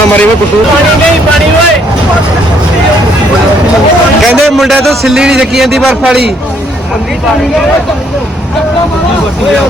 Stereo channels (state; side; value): normal; both; correlation 0.68